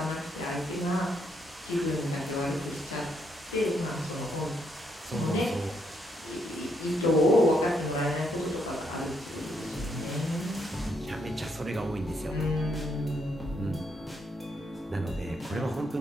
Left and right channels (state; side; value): normal; both; correlation 0.76